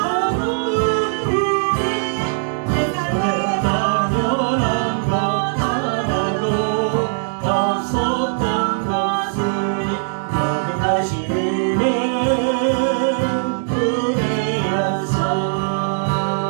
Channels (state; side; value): silent; left; digital silence